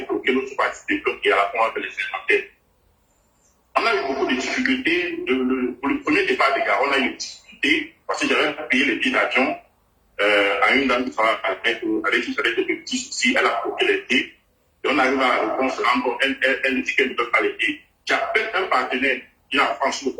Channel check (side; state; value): both; identical; correlation 1.00